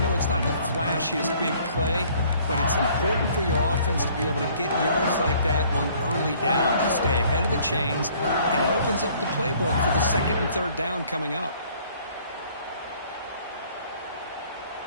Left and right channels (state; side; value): inverted; both; correlation -0.58